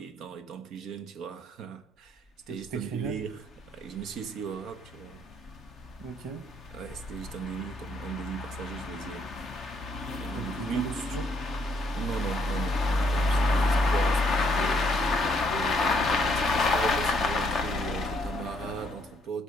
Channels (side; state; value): both; normal; correlation 0.70